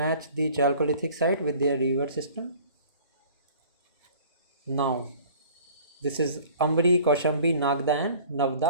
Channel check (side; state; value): both; inverted; correlation -0.49